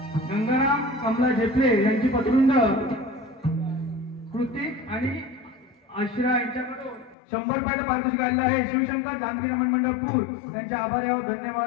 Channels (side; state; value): right; drops out; at 7.2 s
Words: गंगाराम कमला झेपले यांची पत्रुंड कृतिक आणि आश्रा यांच्याकडून 100 रुपयाचं पारितोषिक आलेलं आहे. शिवशंकर जानकी रमण मंडळ पूर त्यांचे आभारी आहोत.